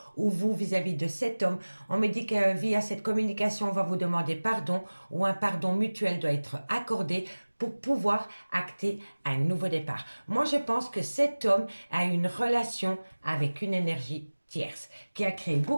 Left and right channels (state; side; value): inverted; both; correlation -1.00